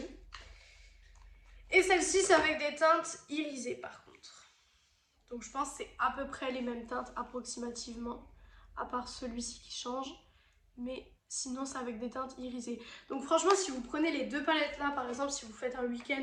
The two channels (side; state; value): both; identical; correlation 1.00